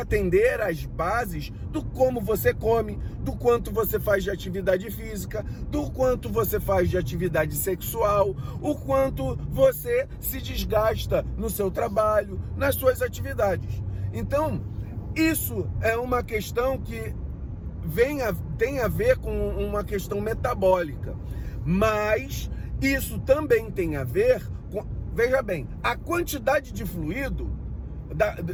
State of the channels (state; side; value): identical; both; correlation 1.00